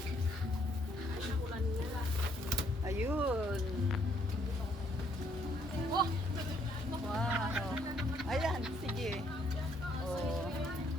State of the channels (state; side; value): normal; both; correlation 0.69